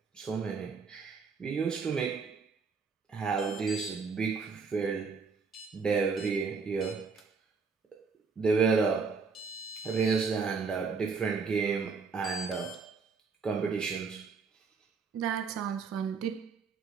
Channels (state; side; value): quieter; left; 5.1 dB